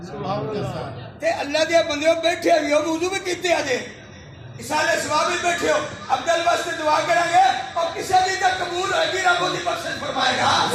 ते अल्लाह दे बंदे बैठे भी हो वुजू भी कीते अजे इसाले सवाब भी बैठे हो अब्दुल वास्ते दुआ करेंगे और किसी दी तक कबूल होगी रब ओदी बख्शिश फरमाएगा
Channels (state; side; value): identical; both; correlation 1.00